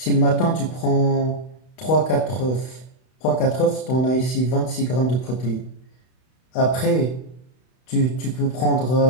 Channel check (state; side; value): late; right; 32 ms